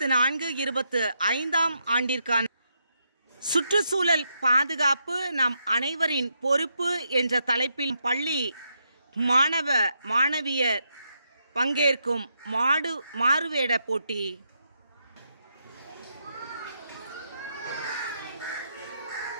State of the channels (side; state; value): both; inverted; correlation -0.80